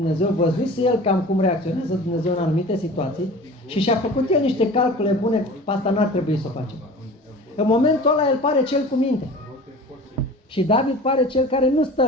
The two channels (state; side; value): normal; both; correlation 0.40